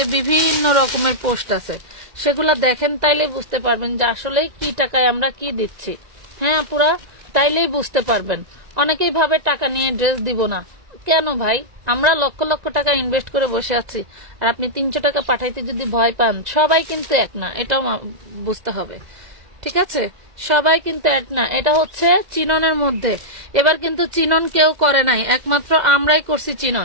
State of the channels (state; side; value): late; left; 2.0 ms